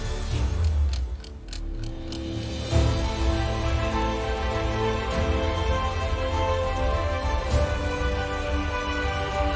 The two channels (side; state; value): both; identical; correlation 1.00